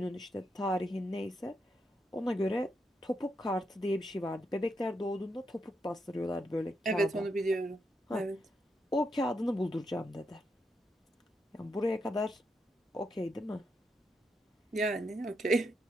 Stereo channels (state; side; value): normal; both; correlation 0.81